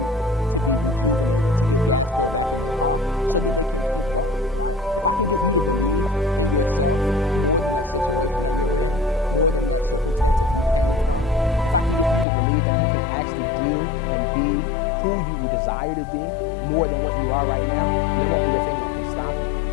to be rejuvenated, to get gas filled back in their car so that they can keep going, right? If I can get you to believe in yourself more than that situation that you're in, more than that circumstance that you came from, if I can get you to believe that you can actually do and be who you desire to be more than what you are right now, and there won't be a thing that can stop you.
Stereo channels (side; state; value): right; drops out; at 12.2 s